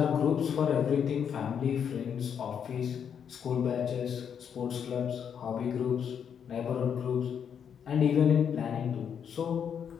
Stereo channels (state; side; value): quieter; right; 7.8 dB